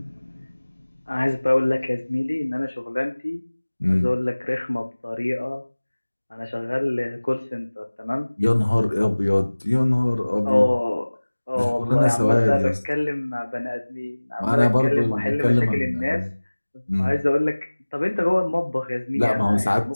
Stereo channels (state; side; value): inverted; both; correlation -1.00